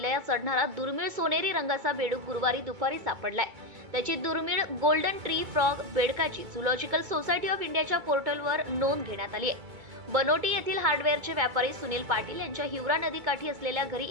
चढणारा दुर्मिळ सोनेरी रंगाचा बेडूक गुरुवारी दुपारी सापडलाय। त्याची दुर्मिळ गोल्डन ट्री फ्रॉग बेडकाची झूलॉजिकल सोसायटी ऑफ इंडियाच्या पोर्टलवर नोंद घेण्यात आली आहे। बनोटी येथील हार्डवेअरचे व्यापारी सुनील पाटील यांच्या हिवरा नदीकाठी असलेल्या घरी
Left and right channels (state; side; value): late; left; 2.2 ms